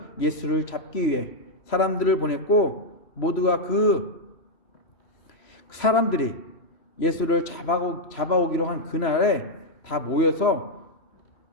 예수를 잡기 위해 사람들을 보냈고 모두가 그 사람들이 예수를 잡아오기로 한 그날에 다 모여서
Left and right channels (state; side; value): late; right; 3.0 ms